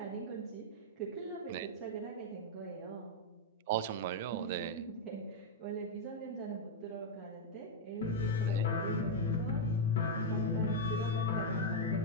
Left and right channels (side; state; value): both; normal; correlation -0.02